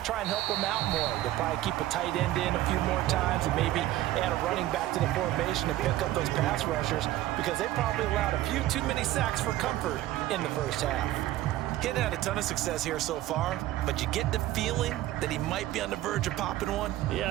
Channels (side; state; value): left; quieter; 15.0 dB